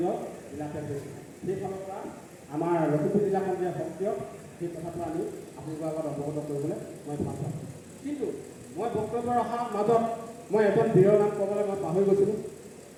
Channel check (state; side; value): identical; both; correlation 1.00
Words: জিলাতে হৈছোঁ। সেইফালৰ পৰা আমাৰ লখিমপুৰ জিলাখন যে সক্ৰিয়, সেই কথাটো আমি আপোনালোকৰ আগত অৱগত কৰিবলৈ মই ভাল পাওঁ। কিন্তু মই বক্তব্য ৰখাৰ মাজত মই এজন বীৰৰ নাম ক'বলৈ মই পাহৰি গৈছিলোঁ।